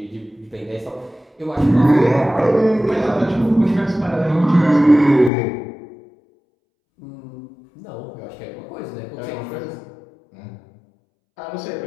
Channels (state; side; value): drops out; right; at 5.3 s